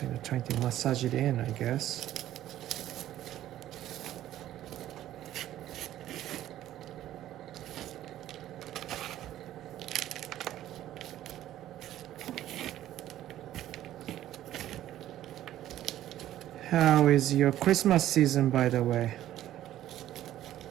of trying to massage it in, I guess. How is your Christmas season, by the way?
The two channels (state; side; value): quieter; left; 12.9 dB